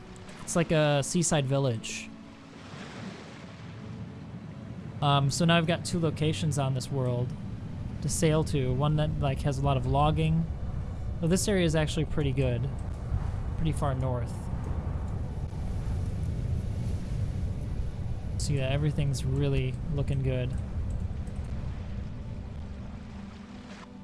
It's like a seaside village. So now I've got two locations on this world to sail to. One that like has a lot of logging. Well, this area is actually pretty good, pretty far north. So yeah, everything's really looking good.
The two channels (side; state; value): both; identical; correlation 1.00